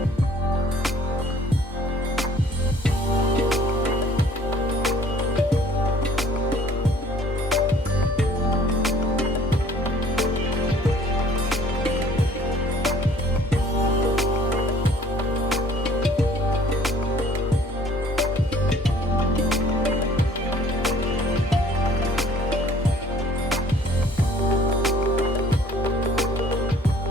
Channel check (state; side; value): normal; both; correlation 0.55